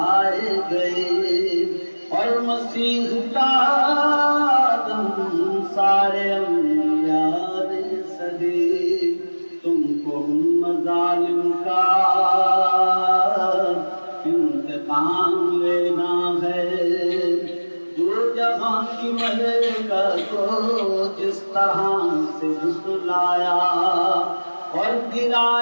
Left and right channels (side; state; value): both; inverted; correlation -1.00